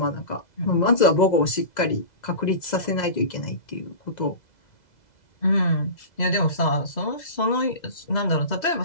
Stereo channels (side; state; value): right; late; 2.0 ms